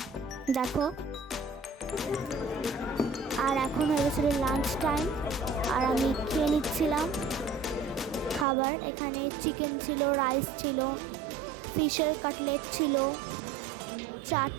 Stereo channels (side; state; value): left; drops out; at 8.5 s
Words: দেখো। আর এখন হয়ে গেছিলো লাঞ্চ টাইম, আর আমি খেয়ে নিচ্ছিলাম খাবার। এখানে চিকেন ছিল, রাইস ছিল, ফিশের কাটলেট ছিল,